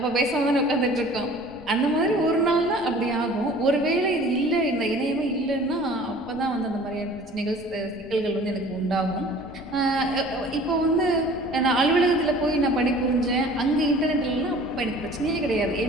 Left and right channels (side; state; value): left; noise; rumble, 22 dB below the sound